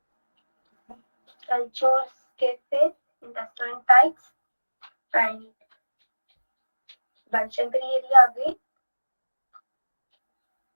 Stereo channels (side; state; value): both; inverted; correlation -1.00